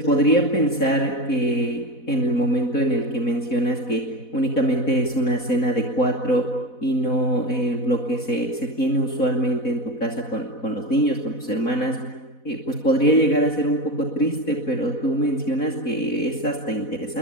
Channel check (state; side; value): late; right; 4.1 ms